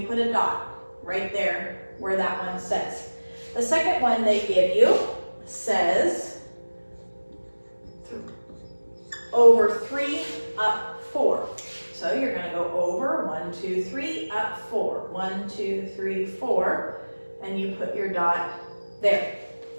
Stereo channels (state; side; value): inverted; both; correlation -1.00